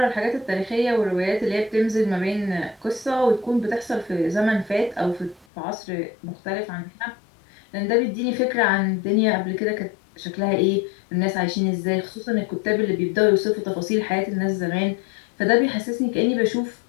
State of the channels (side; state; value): right; drops out; at 5.5 s